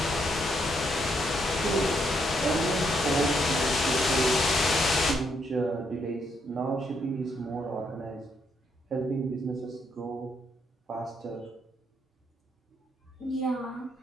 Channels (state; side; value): normal; both; correlation 0.75